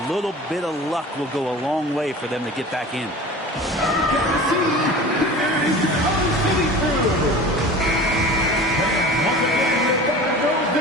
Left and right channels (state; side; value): normal; both; correlation 0.38